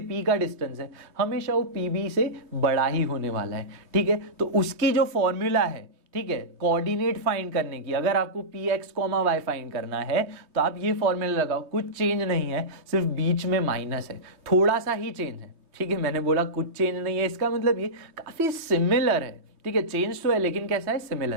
P का डिस्टेंस है, हमेशा वो PB से बड़ा ही होने वाला है। ठीक है, तो उसकी जो फॉर्मूला है, ठीक है, कोऑर्डिनेट फाइंड करने की, अगर आपको px, y फाइंड करना है, तो आप ये फॉर्मूला लगाओ। कुछ चेंज नहीं है, सिर्फ बीच में माइनस है, थोड़ा सा ही चेंज है। ठीक है, मैंने बोला कुछ चेंज नहीं है, इसका मतलब ये काफी सिमिलर है। ठीक है, चेंज तो है लेकिन कैसा है?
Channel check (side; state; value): left; late; 3.2 ms